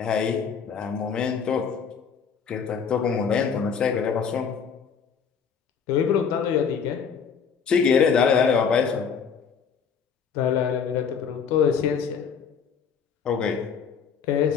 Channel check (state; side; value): quieter; right; 6.6 dB